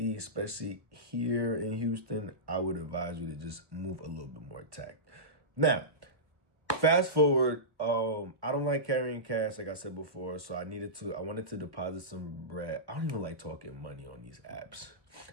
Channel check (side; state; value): left; late; 1.3 ms